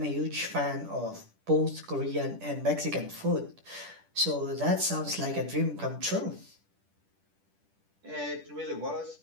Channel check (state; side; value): late; left; 10 ms